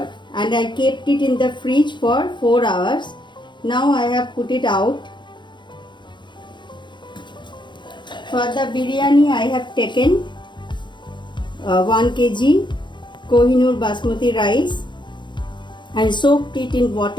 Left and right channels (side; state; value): right; late; 0.23 ms